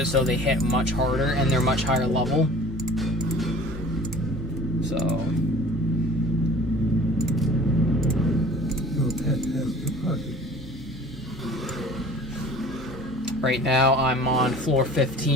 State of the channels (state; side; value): normal; both; correlation 0.46